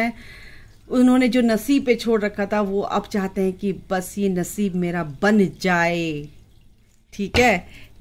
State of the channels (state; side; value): identical; both; correlation 1.00